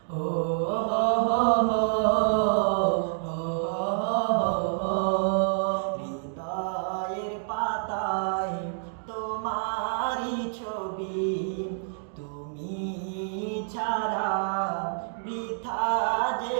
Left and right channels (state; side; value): silent; left; digital silence